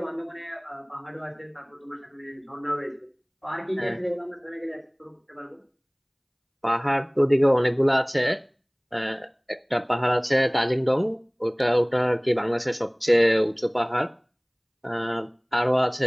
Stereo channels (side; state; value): both; identical; correlation 1.00